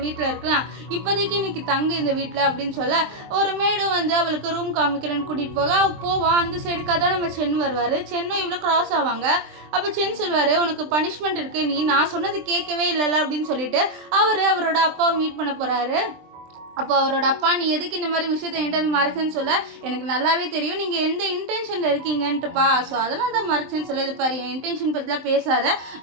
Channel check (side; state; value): left; late; 23 ms